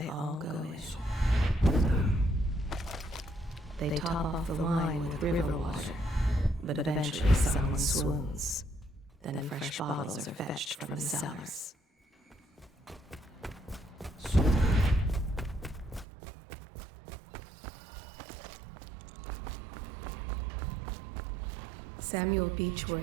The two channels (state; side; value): drops out; left; at 16.1 s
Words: all go in. They top off the wine with river water, but eventually someone swoons. Then fresh bottles are fetched from the cellars. Samuel